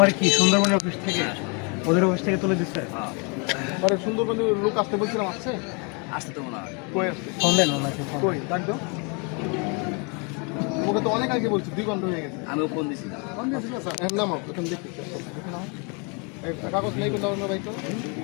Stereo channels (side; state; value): right; quieter; 33.7 dB